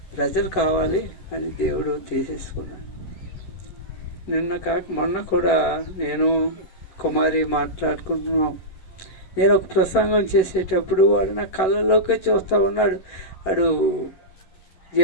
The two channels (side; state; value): right; late; 11 ms